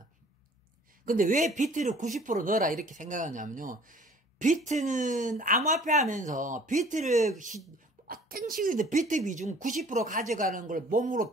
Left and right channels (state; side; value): normal; both; correlation 0.52